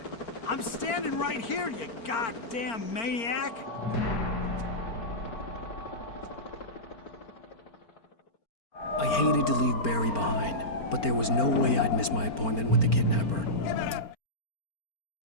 I'm standing right here, you goddamn maniac! I hated to leave Barry behind, but there was no way I'd miss my appointment with the kidnapper.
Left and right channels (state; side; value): late; right; 4.4 ms